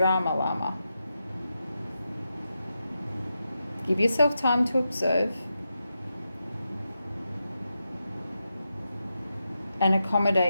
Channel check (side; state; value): both; inverted; correlation -0.88